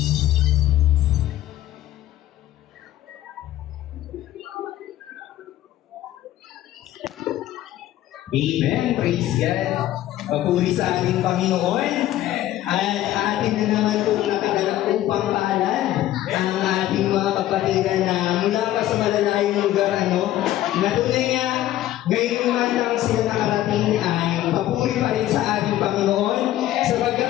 Praise God. Papuri sa ating Panginoon. At atin na naman itong nakadala upang paalan ang ating mga kapatiran na mula pa sa malalayong lugar, na tunay nga, ngayon man lang sila nakarating ay papuri pa rin sa ating Panginoon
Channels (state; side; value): quieter; right; 13.9 dB